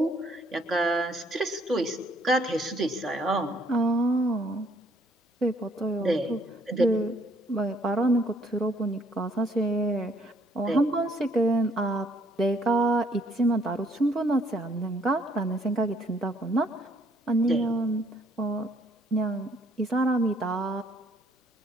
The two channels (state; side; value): normal; both; correlation 0.66